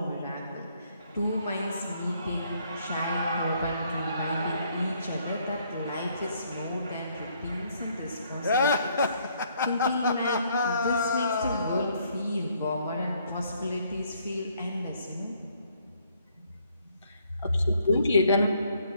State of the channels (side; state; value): both; inverted; correlation -0.67